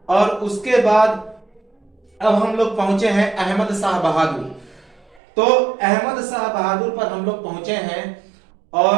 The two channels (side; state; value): left; drops out; at 5.2 s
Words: और उसके बाद अब हम लोग पहुंचे हैं अहमद शाह बहादुर। तो अहमद शाह बहादुर पर हम लोग पहुंचे हैं